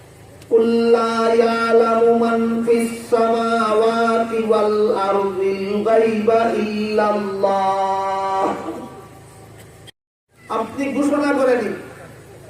কুল লা ইয়ালামু মান ফিস সামাওয়াতি ওয়াল আরদিল গায়বা ইল্লাল্লাহ। আপনি ঘোষণা করে দিন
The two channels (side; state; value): both; identical; correlation 1.00